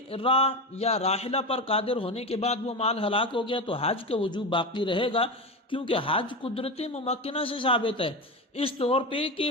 راہ یا راحلہ پر قادر ہونے کے بعد وہ مال ہلاک ہو گیا تو حج کا وجوب باقی رہے گا، کیونکہ حج قدرت ممکنہ سے ثابت ہے، اس طور پہ کہ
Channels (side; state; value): both; normal; correlation 0.20